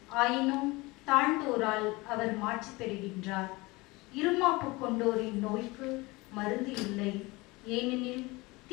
ஆயினும் தாழ்ந்தோரால் அவர் மாட்சி பெறுகின்றார். இருமாப்பு கொண்டோரின் நோய்க்கு மருந்து இல்லை, ஏனெனில்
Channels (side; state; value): right; quieter; 23.1 dB